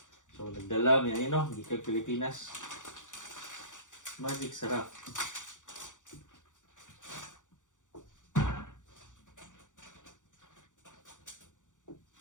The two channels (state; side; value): late; right; 0.86 ms